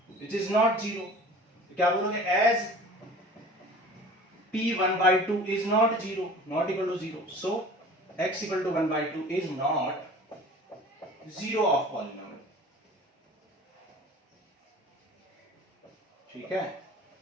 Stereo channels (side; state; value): both; normal; correlation 0.43